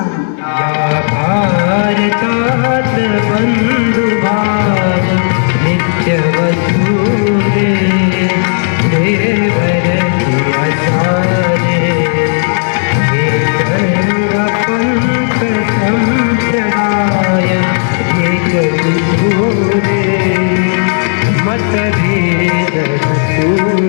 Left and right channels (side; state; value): right; silent; digital silence